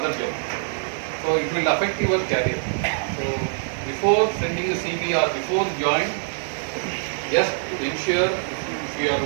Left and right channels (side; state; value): left; silent; digital silence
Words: job. So it will affect your career. So before sending a CV or before join, just ensure if you are